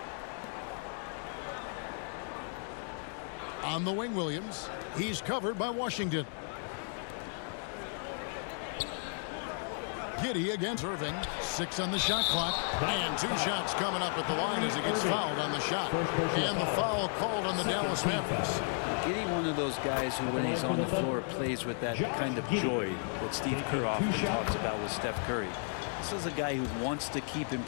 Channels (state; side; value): silent; right; 55 dB below the other